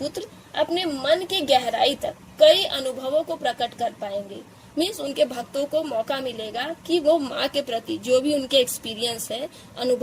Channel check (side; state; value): both; identical; correlation 1.00